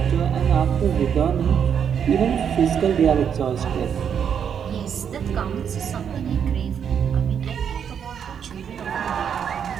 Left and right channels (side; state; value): left; quieter; 7.9 dB